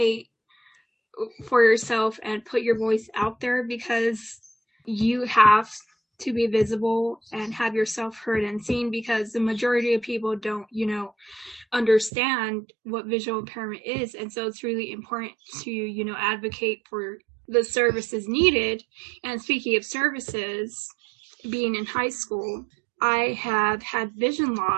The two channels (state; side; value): drops out; left; at 12.1 s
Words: for yourself and put your voice out there, because you have to be visible and have yourself heard and seen, because the majority of people don't, understand what visual impairment is. And so it's really important to, advocate for the services needed. And speaking of services, being in high school, I have had vision